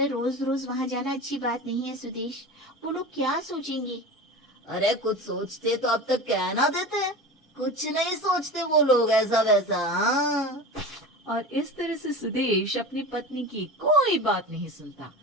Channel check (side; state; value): both; normal; correlation 0.31